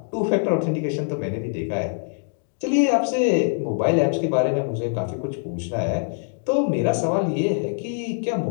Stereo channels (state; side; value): silent; right; digital silence